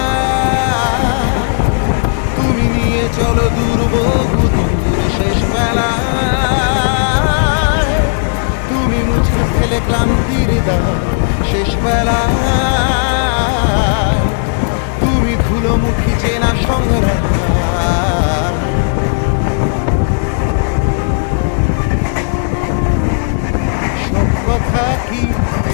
তুমি নিয়ে চলো দূর বহু দূর শেষ বেলা তুমি মুছে ফেলে ক্লান্তির দাগ শেষ বেলা তুমি ধুলোমুখী চেনা সংগ্রাম সব কথা কি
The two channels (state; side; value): silent; right; digital silence